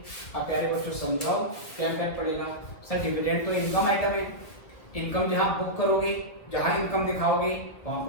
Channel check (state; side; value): late; right; 2.0 ms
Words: अब प्यारे बच्चों समझाओ क्या इम्पैक्ट पड़ेगा। सर डिविडेंड तो इनकम आइटम है, इनकम जहां बुक करोगे, जहां इनकम दिखाओगे वहां